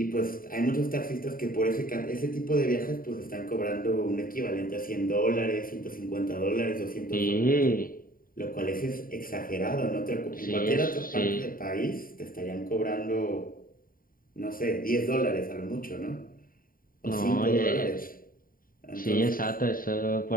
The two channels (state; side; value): late; right; 0.41 ms